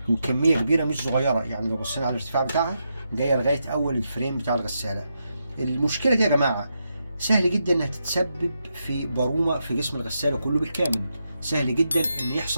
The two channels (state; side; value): inverted; both; correlation -0.84